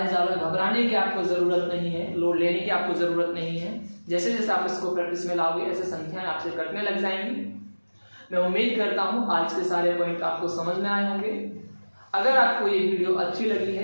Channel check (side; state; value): both; inverted; correlation -1.00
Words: ज़्यादा घबराने की आपको ज़रूरत नहीं है, लोड लेने की आपको ज़रूरत नहीं है। जैसे जैसे आप इसको प्रैक्टिस में लाओगे ऐसे संख्याएं आपसे कटने लग जाएंगी। मैं उम्मीद करता हूँ आज के सारे पॉइंट आपको समझ में आए होंगे। अगर आपको ये वीडियो अच्छी लगी